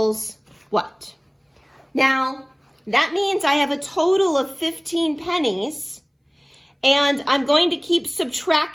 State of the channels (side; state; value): both; identical; correlation 1.00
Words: what? Now, that means I have a total of 15 pennies, and I'm going to keep